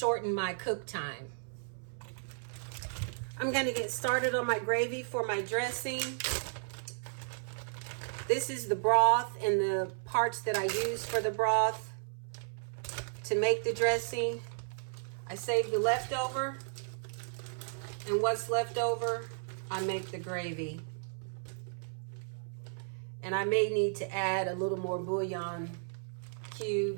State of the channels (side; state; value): left; silent; 55 dB below the other